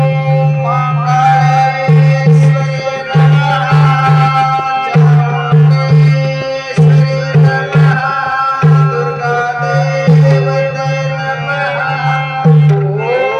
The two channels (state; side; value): identical; both; correlation 1.00